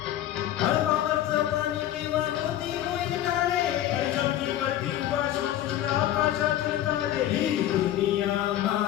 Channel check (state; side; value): quieter; right; 12.5 dB